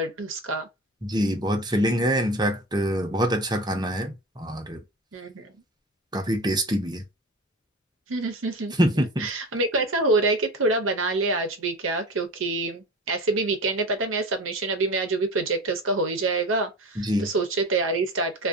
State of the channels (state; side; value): normal; both; correlation 0.32